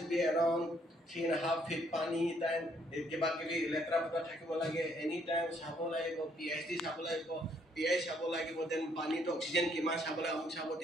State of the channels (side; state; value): both; normal; correlation 0.68